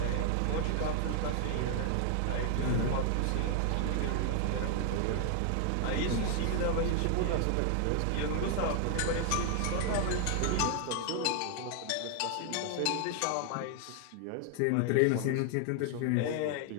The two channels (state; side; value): different; both; correlation 0.00